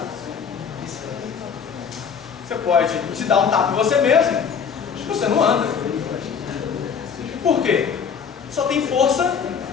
Você pode te dar um tapa em você mesmo, você não anda. Por quê? Só tem força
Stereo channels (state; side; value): quieter; right; 6.8 dB